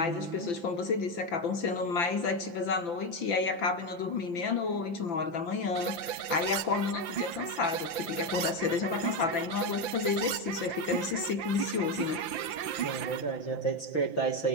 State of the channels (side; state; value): right; late; 5.9 ms